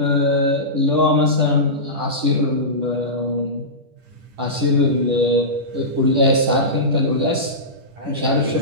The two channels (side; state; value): left; late; 10 ms